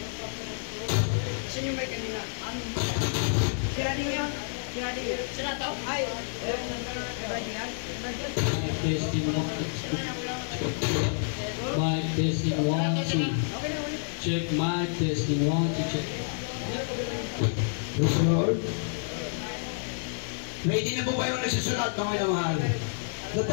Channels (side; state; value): right; silent; 59 dB below the other